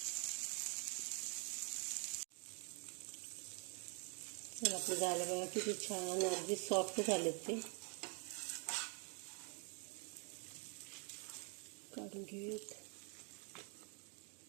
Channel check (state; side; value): quieter; left; 37.5 dB